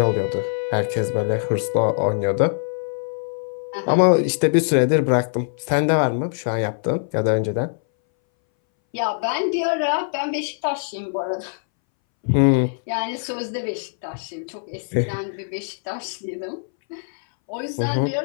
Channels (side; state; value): right; silent; 62 dB below the other